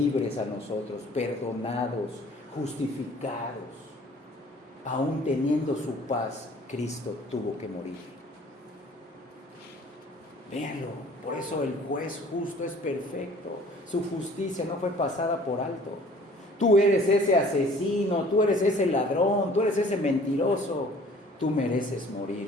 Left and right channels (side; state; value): both; normal; correlation 0.52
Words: a nosotros, perdonados, justificados, aún teniendo su paz, Cristo tuvo que morir. Véanlo, por eso el juez justo es perfecto. Su justicia no fue pasada por alto. Tú eres ese asesino, tú eres ese ladrón, tú eres ese mentiroso. Tú mereces